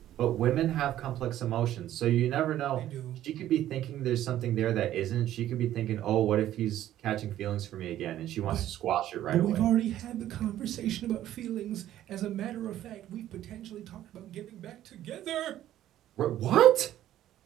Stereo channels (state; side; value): quieter; left; 12.7 dB